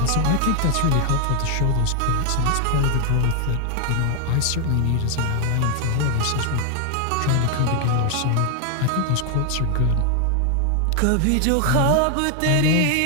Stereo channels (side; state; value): both; different; correlation 0.00